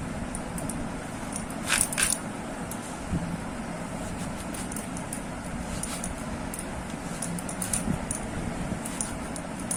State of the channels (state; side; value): identical; both; correlation 1.00